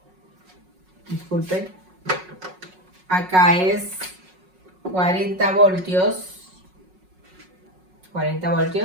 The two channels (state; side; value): late; left; 5.4 ms